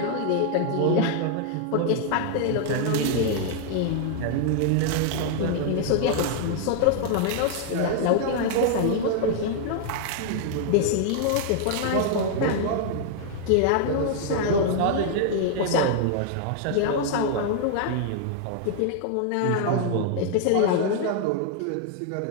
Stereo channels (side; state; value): both; different; correlation 0.00